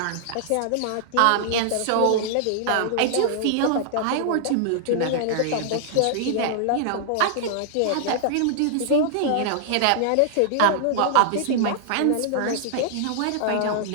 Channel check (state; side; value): different; both; correlation -0.01